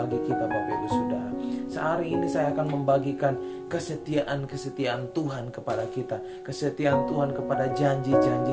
kita Bapak Ibu Saudara. Sehari ini saya akan membagikan kesetiaan Tuhan kepada kita, kesetiaan Tuhan kepada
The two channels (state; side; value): identical; both; correlation 1.00